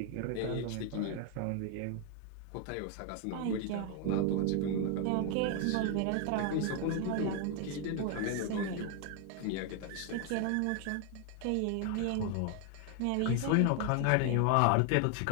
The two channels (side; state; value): both; different; correlation 0.00